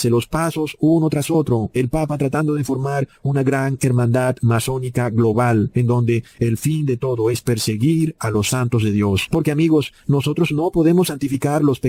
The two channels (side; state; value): both; identical; correlation 1.00